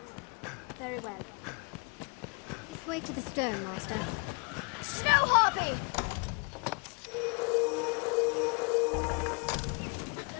Very well. This way to the stone, Master. Snow Harpy!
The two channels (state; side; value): quieter; right; 34.8 dB